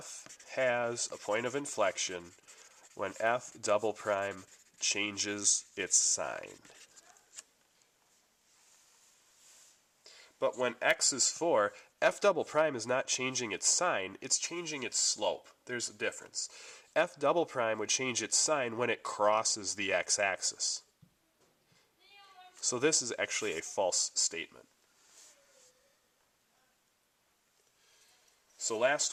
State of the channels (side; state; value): both; identical; correlation 1.00